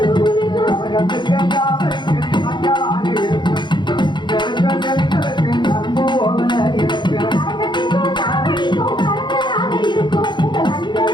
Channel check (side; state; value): right; late; 0.22 ms